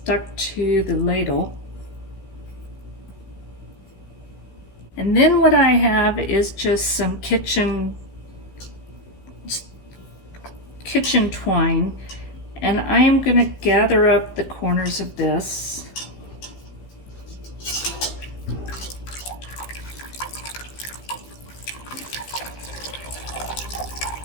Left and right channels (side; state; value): right; late; 15 ms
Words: to the ladle. And then what I have is just some kitchen twine, and I am going to gather up the corners of this.